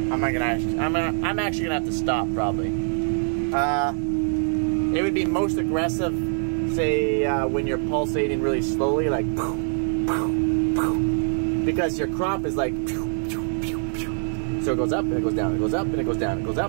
actually going to have to stop probably. It would be most aggressive, say, when you're pulsating really slowly, like, because your crop is like, so it goes up and it goes down, it goes up and it goes down, it goes up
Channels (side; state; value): left; silent; digital silence